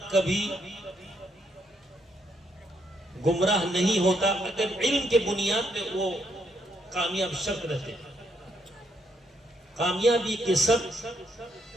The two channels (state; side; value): normal; both; correlation 0.75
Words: کبھی گمراہ نہیں ہوتا اگر علم کے بنیاد پہ وہ کامیاب شرط رہتے. کامیابی کے شرط